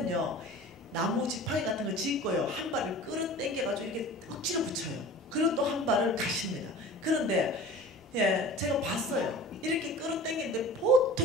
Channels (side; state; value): both; normal; correlation 0.40